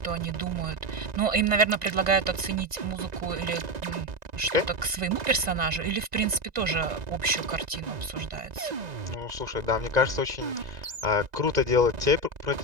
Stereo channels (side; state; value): left; late; 2.0 ms